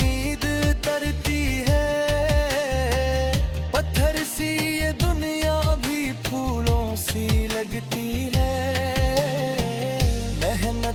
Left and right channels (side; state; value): both; identical; correlation 1.00